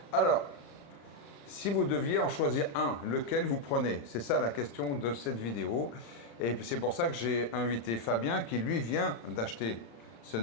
Alors, si vous deviez en choisir un, lequel vous prenez? C'est ça la question de cette vidéo. Et c'est pour ça que j'ai invité Fabien, qui lui vient d'acheter ce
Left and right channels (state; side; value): late; right; 35 ms